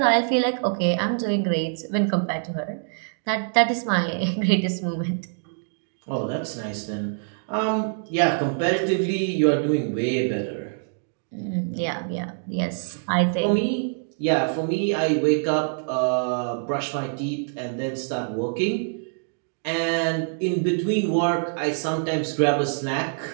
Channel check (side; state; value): left; silent; digital silence